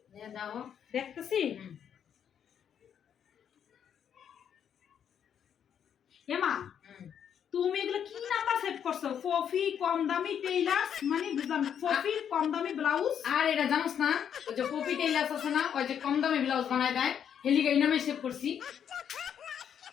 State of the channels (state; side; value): quieter; right; 8.6 dB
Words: দাও দেখতেছি এমা তুমি এগুলো কি নাম্বার সেভ করছো ফফি কম দামি টেইলার্স মানে বুঝলাম ফফি কম দামি ব্লাউজ আর এটা জানোস না ওই যে পপি টেইলার্স আছে না ওই যে কম দামে ব্লাউজ বানায় দেয় হেলিগা এই নামে সেভ করছি